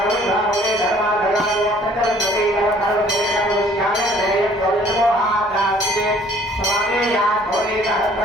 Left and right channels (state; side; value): normal; both; correlation 0.56